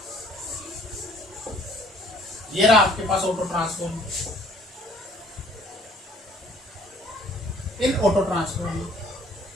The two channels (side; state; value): both; normal; correlation 0.58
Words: ये रहा आपके पास ऑटो ट्रांसफॉर्मर। इन ऑटो ट्रांसफॉर्मर